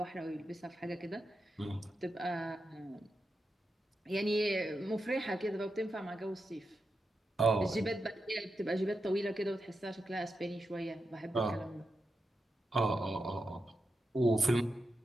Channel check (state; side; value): normal; both; correlation 0.88